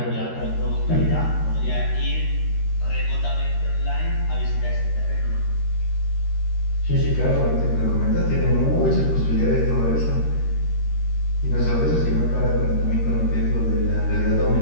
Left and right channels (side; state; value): right; late; 13 ms